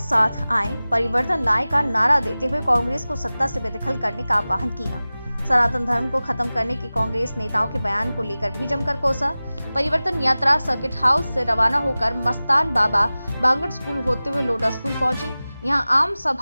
आए, परिवर्तन लाए का नारा देते हुए कांग्रेस को सत्ता से बेदखल करने का आह्वान किया। सनातन धर्म को खत्म करने के कांग्रेस नेताओं के बयान को लेकर भी जमकर कोसा। परिवर्तन यात्रा सर्किट हाउस से रवाना होकर मस्तान बाबा बांगड़ स्कूल होते हुए लोडा स्कूल पहुंची। यहां आम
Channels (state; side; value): inverted; both; correlation -0.97